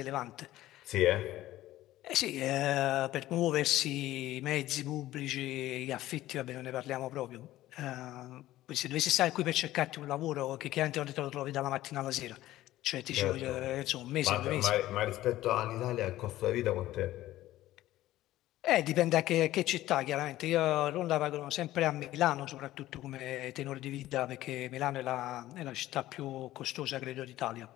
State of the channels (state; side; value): quieter; right; 15.2 dB